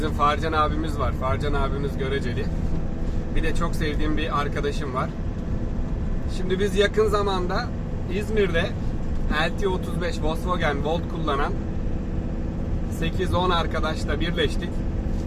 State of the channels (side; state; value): both; identical; correlation 1.00